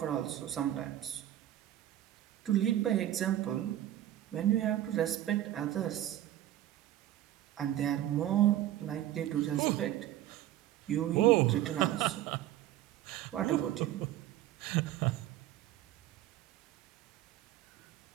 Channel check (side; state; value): left; quieter; 13.0 dB